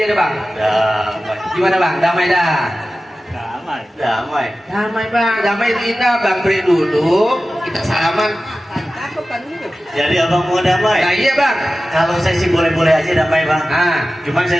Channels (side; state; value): both; normal; correlation 0.95